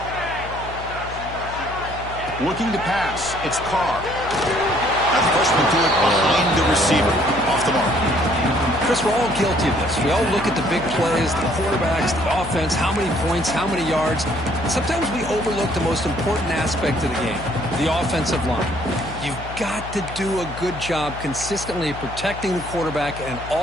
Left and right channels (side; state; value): left; noise; hum, 12 dB below the sound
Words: Looking to pass. It's Carr. That freshman threw it behind the receiver. Off the mark. Chris, we're all guilty of this. We all look at the big plays, the quarterbacks, the offense, how many points, how many yards. And sometimes we overlook the most important aspect of the game, the offensive line. You've got to do a good job consistently protecting the quarterback, and it